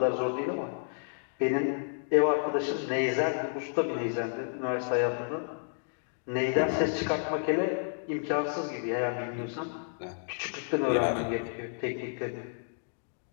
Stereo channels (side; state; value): right; silent; digital silence